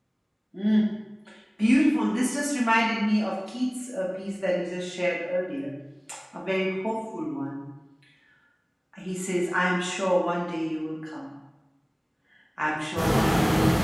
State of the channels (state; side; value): identical; both; correlation 1.00